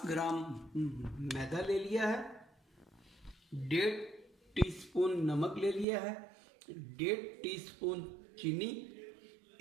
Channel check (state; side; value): drops out; left; at 5.9 s